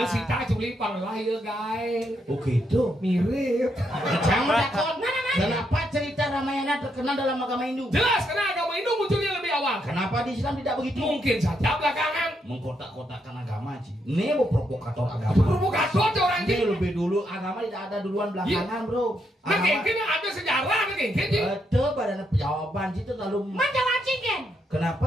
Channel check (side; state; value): both; normal; correlation 0.78